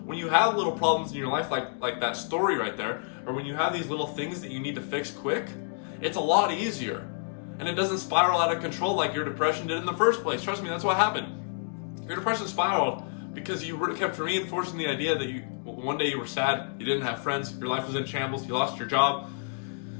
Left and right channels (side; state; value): right; silent; digital silence